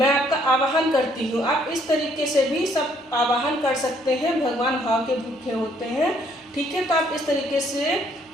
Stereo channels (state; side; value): normal; both; correlation 0.66